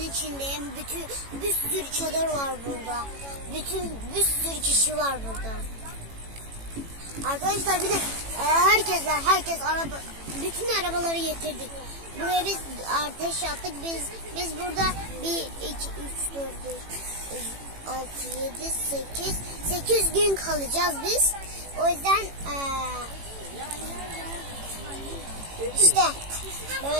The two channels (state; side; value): late; left; 18 ms